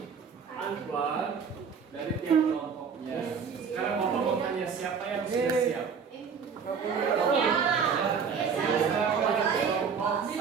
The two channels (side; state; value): left; quieter; 6.3 dB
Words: Siapa yang sudah siap?